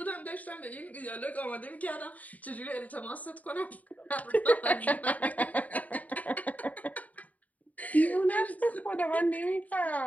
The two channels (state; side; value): late; right; 0.073 ms